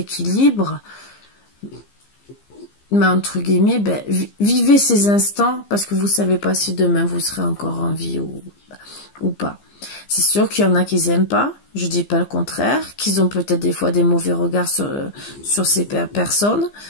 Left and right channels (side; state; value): right; late; 15 ms